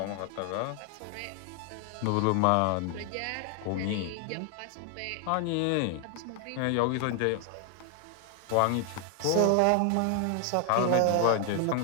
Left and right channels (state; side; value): different; both; correlation 0.00